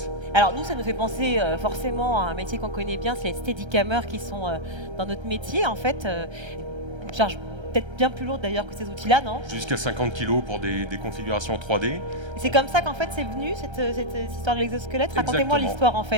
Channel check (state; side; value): late; left; 1.3 ms